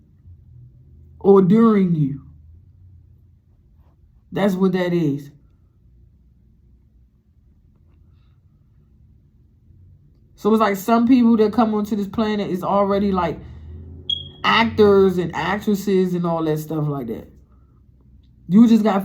or during you. That's what that is. So it's like some people that come onto this planet is already like actors and actresses and all that stuff like that. You just got to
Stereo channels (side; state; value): both; identical; correlation 1.00